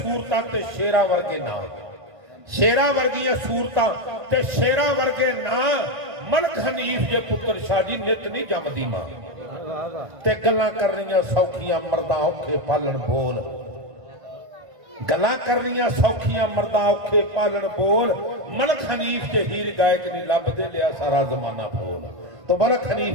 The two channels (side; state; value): left; late; 1.5 ms